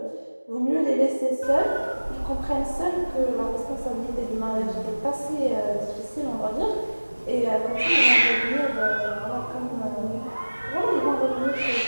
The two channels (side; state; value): both; inverted; correlation -1.00